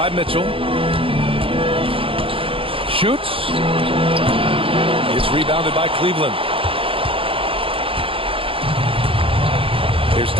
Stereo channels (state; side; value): late; left; 0.26 ms